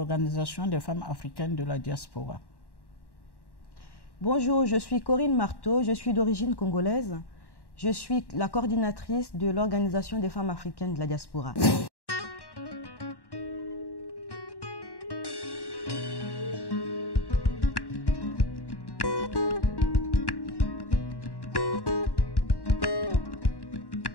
des femmes africaines de la diaspora. Bonjour, je suis Corinne Marteau, je suis d'origine congolaise. Je suis la coordinatrice de l'Organisation des femmes africaines de la diaspora.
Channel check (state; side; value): late; right; 1.1 ms